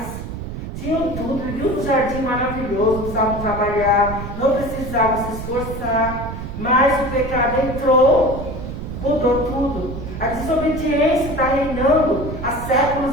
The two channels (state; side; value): noise; right; rumble, 8 dB below the sound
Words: Tinham tudo, viviam um jardim maravilhoso, não precisavam trabalhar, não precisavam se esforçar. Mas o pecado entrou, mudou tudo. A desobediência está reinando há